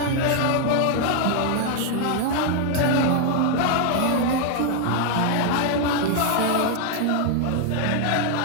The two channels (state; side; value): different; both; correlation 0.00